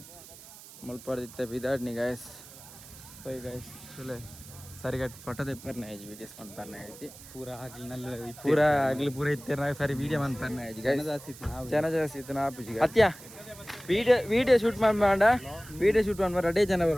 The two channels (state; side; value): noise; right; hiss, 18 dB below the sound